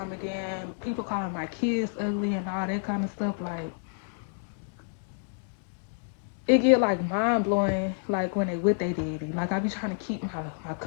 and then people calling my kids ugly and all that kind of stuff, like it get like mind blowing, like when they with they daddy. Like I be trying to keep my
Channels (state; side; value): silent; right; digital silence